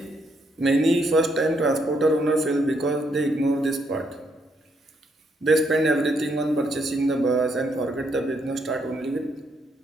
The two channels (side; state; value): both; normal; correlation 0.75